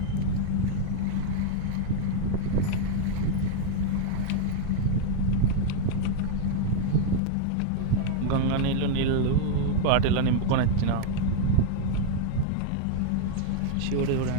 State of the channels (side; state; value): both; different; correlation 0.00